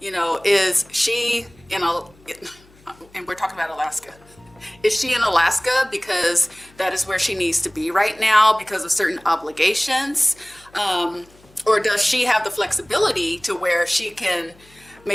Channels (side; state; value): left; noise; hum, 28 dB below the sound